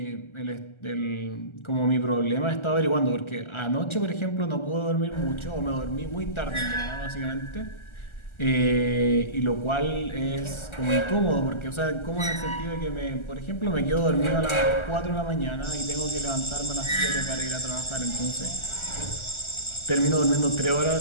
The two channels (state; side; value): late; right; 1.4 ms